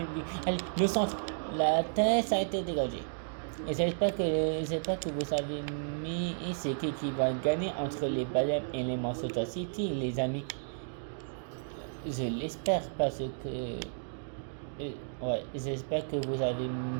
but. Allez, le centre. La tête a été dégagée. Et j'espère que vous avez mis c'est qui va gagner entre les Bayern et les Manchester City, les amis. Je l'espère parce que... ouais, j'espère que vous avez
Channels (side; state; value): left; silent; digital silence